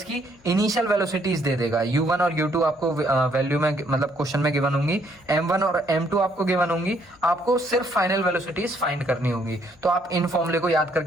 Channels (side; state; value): left; noise; hum, 30 dB below the sound